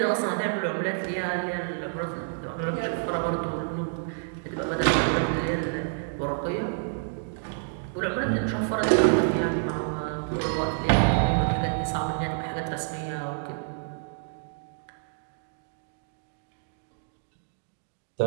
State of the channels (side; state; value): left; silent; digital silence